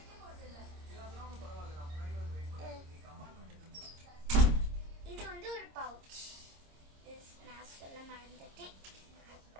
இது வந்து ஒரு பவுச். நான் சொல்ல மறந்துட்டேன்.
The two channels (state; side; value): late; left; 26 ms